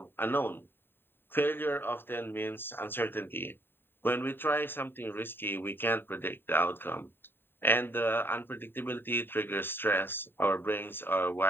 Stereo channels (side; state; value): right; late; 0.10 ms